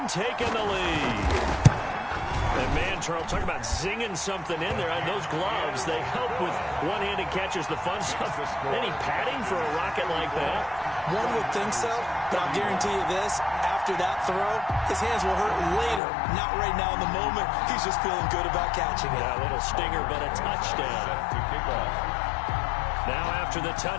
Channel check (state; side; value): drops out; right; at 16.0 s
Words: taken the lead. And man, Charles, talk about zinging something in there. And those gloves, they help with one-handed catches, the fun stuff. Any padding for a rocket like that? One would think so, but I'll guarantee you this. After that throw, his hands will hurt later. Not right now in the moment. He's just feeling good about catching it. Yeah, a little stinger, but a touchdown. To kick off. Now after the